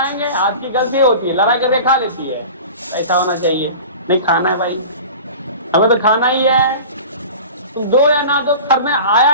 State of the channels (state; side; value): inverted; both; correlation -0.37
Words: आज की गलती होती है, लड़ाई करके खा लेती है। ऐसा होना चाहिए, नहीं खाना है भाई, हमें तो खाना ही है, तुम दो या ना दो, घर में आया